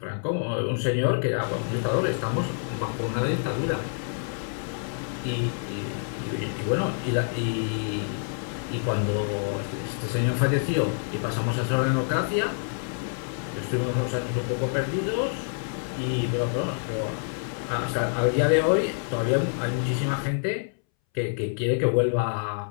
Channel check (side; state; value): right; silent; 60 dB below the other